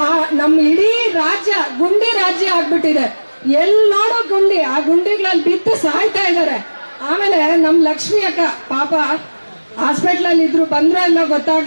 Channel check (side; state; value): both; inverted; correlation -1.00